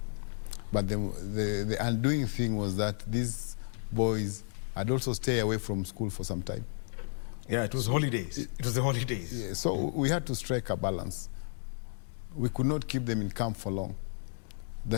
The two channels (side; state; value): right; silent; digital silence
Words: But the undoing thing was that these boys had also stayed away from school for some time. Yeah, it was holidays. It was the holidays. Yeah, so we had to strike a balance. We could not keep them in camp for long.